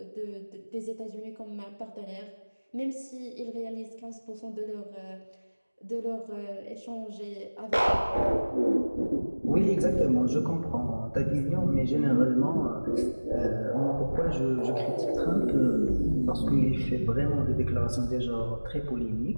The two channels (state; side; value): inverted; both; correlation -1.00